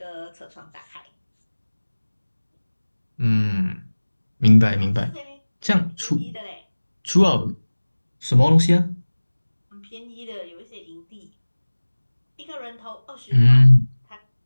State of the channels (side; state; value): both; inverted; correlation -1.00